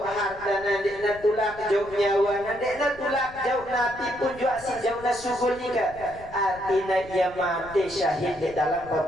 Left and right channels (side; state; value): left; noise; rumble, 19 dB below the sound